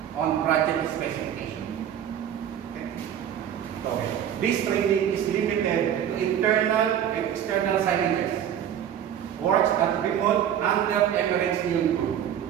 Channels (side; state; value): left; quieter; 9.8 dB